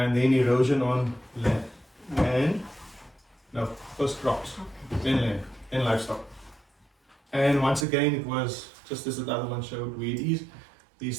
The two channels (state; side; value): drops out; left; at 7.9 s